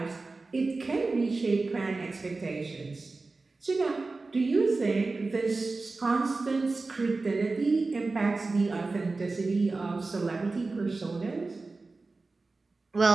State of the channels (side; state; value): left; quieter; 3.6 dB